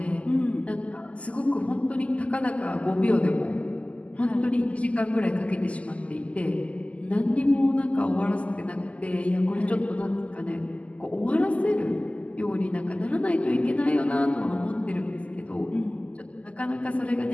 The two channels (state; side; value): late; right; 0.064 ms